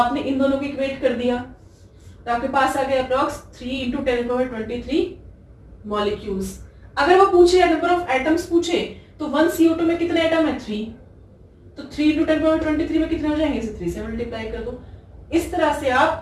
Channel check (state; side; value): identical; both; correlation 1.00